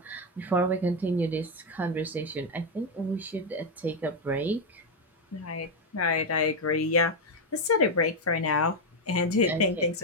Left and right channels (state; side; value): normal; both; correlation 0.04